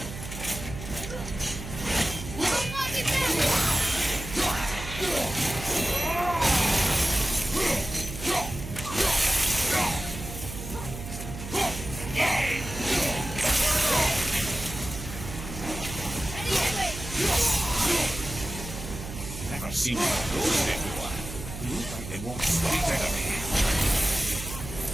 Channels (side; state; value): right; noise; hum, 10 dB below the sound